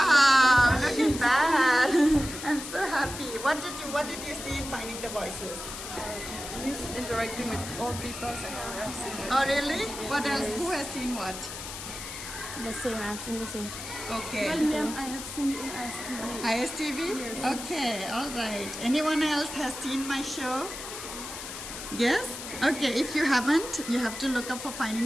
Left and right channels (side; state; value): left; noise; hiss, 9 dB below the sound